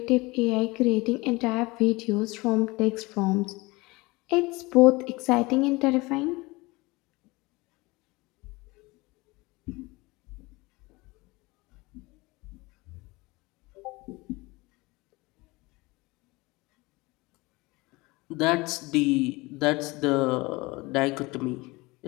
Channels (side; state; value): right; quieter; 23.2 dB